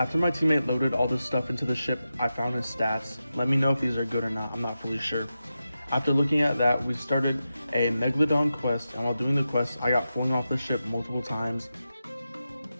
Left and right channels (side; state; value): both; inverted; correlation -0.91